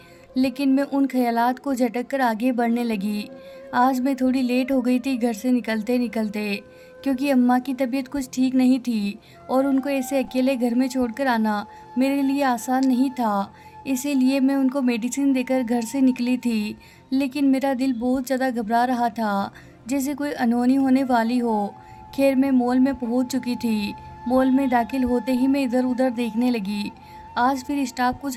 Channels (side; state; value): both; identical; correlation 1.00